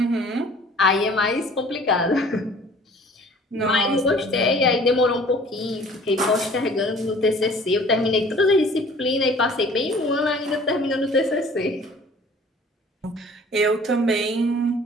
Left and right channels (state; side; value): normal; both; correlation 0.50